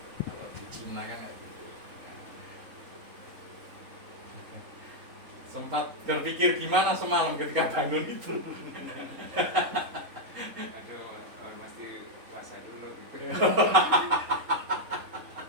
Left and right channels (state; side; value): late; left; 3.8 ms